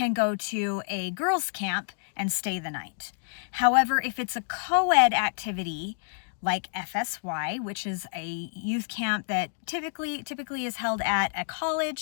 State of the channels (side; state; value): right; silent; digital silence